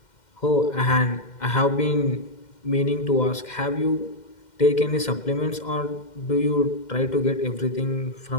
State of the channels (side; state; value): right; late; 2.1 ms